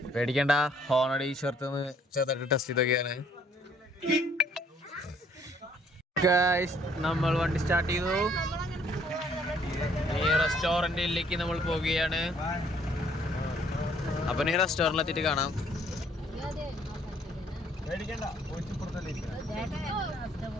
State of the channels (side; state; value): both; normal; correlation 0.63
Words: പേടിക്കണ്ട, ഹോണടി ചേർത്ത് ചെറുതായിട്ട് ടെസ്റ്റ് ചെയ്തൊക്കെയാണ് ഗൈസ്. നമ്മൾ വണ്ടി സ്റ്റാർട്ട് ചെയ്തു. ഈ റെസ്റ്റോറന്റിലേക്ക് നമ്മൾ പോവുകയാണ്. അപ്പൊ ഈ റെസ്റ്റോറന്റിൽ എത്തിയിട്ട് കാണാം.